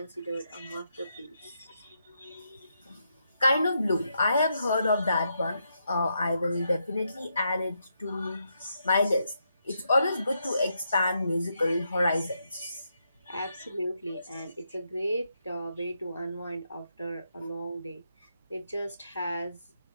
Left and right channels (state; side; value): inverted; both; correlation -0.81